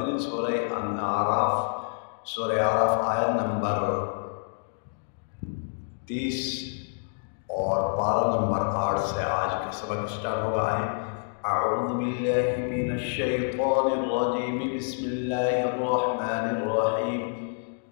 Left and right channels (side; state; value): right; silent; digital silence